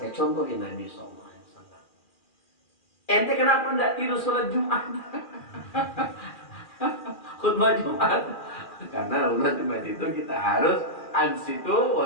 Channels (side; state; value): right; late; 2.4 ms